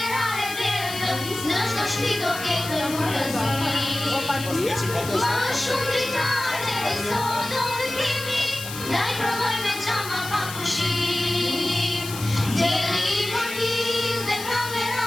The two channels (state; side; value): noise; left; hiss, 10 dB below the sound